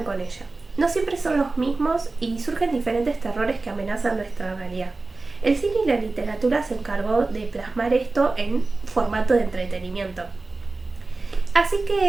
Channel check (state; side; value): quieter; left; 3.5 dB